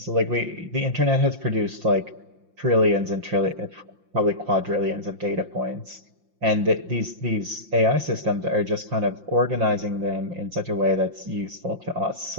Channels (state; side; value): late; left; 5.8 ms